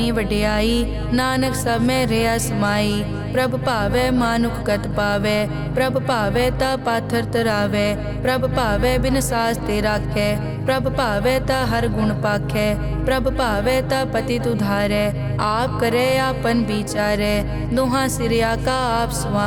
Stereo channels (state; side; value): identical; both; correlation 1.00